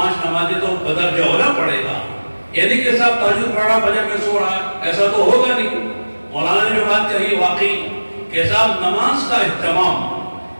نمازیں تو بدر جوہرہ پڑھے گا۔ یعنی کہ صاحب تہجد پڑھا فجر میں سو رہا ہے، ایسا تو ہوگا نہیں۔ مولانا نے جو بات کہی واقعی کہ صاحب نماز کا اہتمام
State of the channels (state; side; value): inverted; both; correlation -1.00